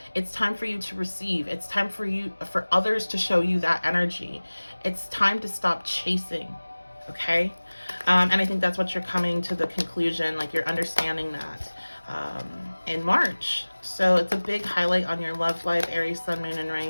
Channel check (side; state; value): both; inverted; correlation -1.00